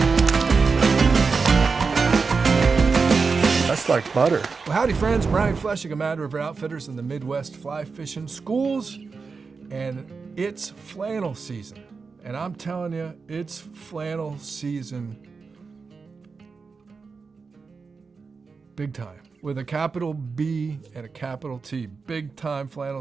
That's like butter. Well, howdy friends, Brian Flechsig of Mad River Outfitters in the Midwest Fly Fishing Schools, and it's flannel season. And I'm telling you, it's flannel season big time. With a capital B and a capital T. Big time flannel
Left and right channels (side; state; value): left; quieter; 4.8 dB